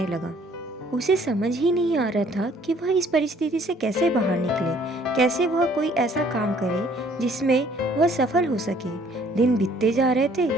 लगा। उसे समझ ही नहीं आ रहा था कि वह इस परिस्थिति से कैसे बाहर निकले, कैसे वह कोई ऐसा काम करे जिसमें वह सफल हो सके। दिन बीतते जा रहे थे,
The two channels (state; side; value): normal; both; correlation 0.59